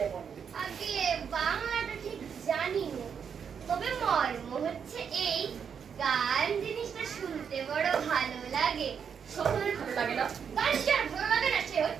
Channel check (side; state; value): left; quieter; 7.1 dB